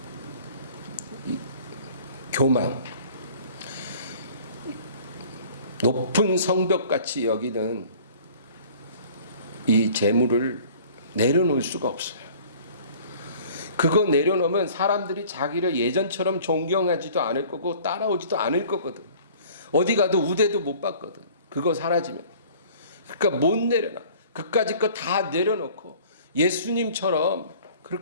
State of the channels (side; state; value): both; inverted; correlation -0.49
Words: 교만. 높은 성벽같이 여기는 이 재물을 내려놓을 수가 없어요. 그거 내려놓으면 사람들이 자기를 예전처럼 존경하지도 않을 거고 따라오지도 않을 거거든. 어디 가도 우대도 못 받거든, 그거 사라지면. 그러니까 못 내려놔. 그까짓 거 다 내려놓고 예수님처럼